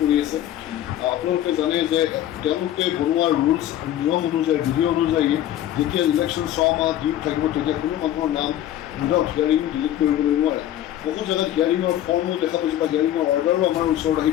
আছে। আপোনালোকে জানে যে তেওঁলোকে বনোৱা ৰুলছ নিয়ম অনুযায়ী, বিধি অনুযায়ী যেতিয়া ইলেকশ্যন 6 মাহ ডিউ থাকিব তেতিয়া কোনো মানুহৰ নাম উইদাউট হিয়াৰিং ডিলিট কৰিবলৈ নোৱাৰে। বহু জেগাত হিয়াৰিঙৰ ফৰ্মো দেখা পাইছোঁ বা হিয়াৰিঙৰ অৰ্ডাৰো আমাৰ ওচৰত আহি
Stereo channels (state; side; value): quieter; right; 12.3 dB